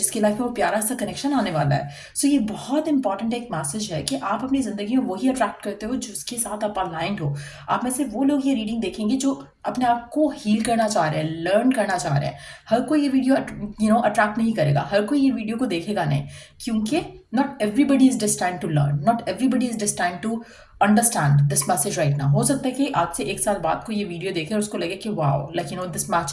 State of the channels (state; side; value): identical; both; correlation 1.00